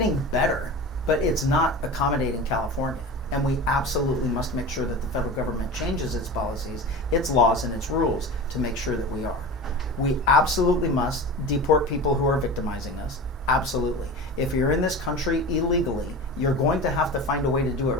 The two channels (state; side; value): normal; both; correlation 0.31